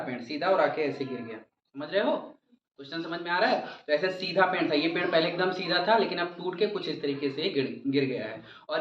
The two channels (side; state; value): both; identical; correlation 1.00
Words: सीधा और आके ऐसे गिर गया। समझ रहे हो? क्वेश्चन समझ में आ रहा है? तो ऐसे सीधा पेड़ था, ये पेड़ पहले एकदम सीधा था, लेकिन अब टूट के कुछ इस तरीके से गिर गया है।